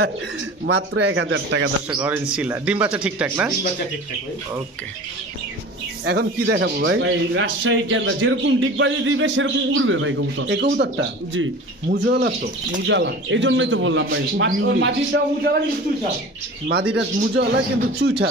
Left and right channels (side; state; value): both; normal; correlation 0.38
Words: মাত্র 1000 টাকা দর্শক অরেঞ্জ চিলা। ডিম বাচ্চা ঠিকঠাক না? ডিম বাচ্চা ঠিকঠাক ভাই। ওকে এখন কি দেখাবো ভাই? ভাই রাজশাহী কেন্দ্র যেরকম ডিগবাজি দিবে সেরকম উড়বে ভাই কবুতর। এই কবুতরটা জি মুজালা তো? মুজালা, এই জন্যই তো বললাম ভাই। মাটিটা মুজালা কিন্তু চুইঠাল। মাদিটা মুজালা কিন্তু